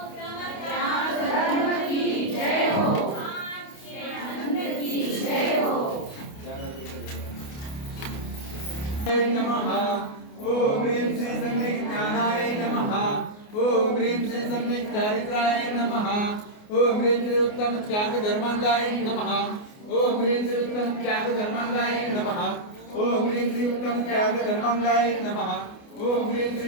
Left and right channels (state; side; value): late; right; 28 ms